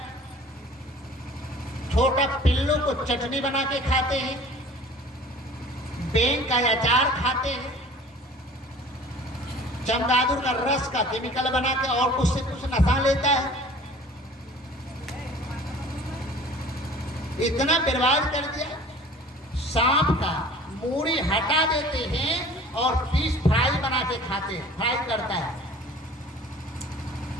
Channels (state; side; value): normal; both; correlation 0.46